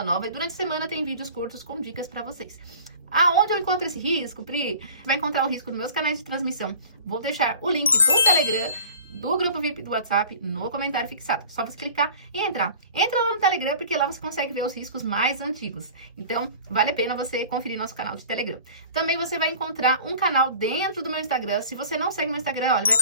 nova e durante a semana tem vídeos curtos com dicas para vocês. Aonde eu encontro esse risco, Pri? Você vai encontrar o risco nos meus canais de transmissão. Vou deixar o link do Telegram, do grupo VIP do WhatsApp, no comentário fixado. Só você clicar e entrar. Entra lá no Telegram, porque lá você consegue ver os riscos mais antigos. Então, vale a pena você conferir nosso canal de Telegram. Também você vai encontrar um canal dentro do meu Instagram. Se você não segue meu Instagram, olha, vai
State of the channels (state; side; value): inverted; both; correlation -0.44